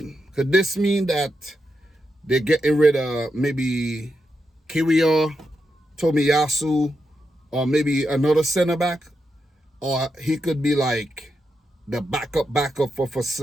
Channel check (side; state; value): both; normal; correlation 0.85